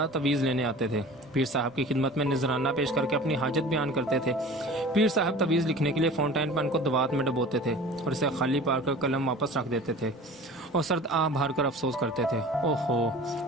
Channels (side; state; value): both; normal; correlation 0.40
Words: تویز لینے آتے تھے۔ پیر صاحب کی خدمت میں نذرانہ پیش کر کے اپنی حاجت بیان کرتے تھے۔ پیر صاحب تویز لکھنے کے لیے فاؤنٹین پین کو دوات میں ڈبوتے تھے اور اسے خالی پار کر قلم واپس رکھ دیتے تھے اور سرد آہ بھر کر افسوس کرتے تھے، اوہو